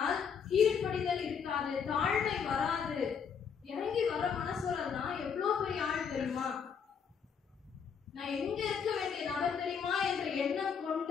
கீழ்ப்படிதல் இருக்காது, தாழ்மை வராது. இறங்கி வர மனசுறதுதான் எவ்வளவு பெரிய ஆள் தெரியுமா? நான் எங்க இருக்க வேண்டிய நபர் தெரியுமா என்ற எண்ணம்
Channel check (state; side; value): quieter; right; 6.8 dB